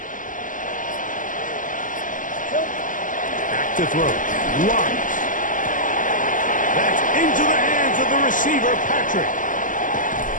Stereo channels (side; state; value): right; late; 0.38 ms